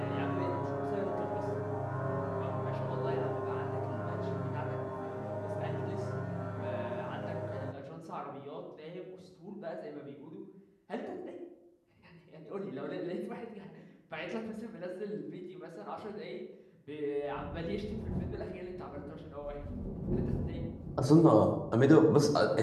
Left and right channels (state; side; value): identical; both; correlation 1.00